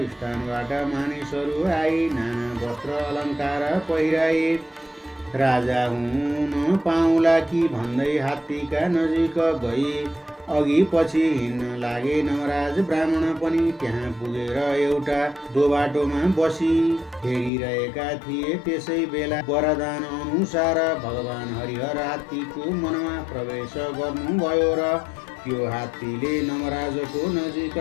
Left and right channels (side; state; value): right; drops out; at 17.5 s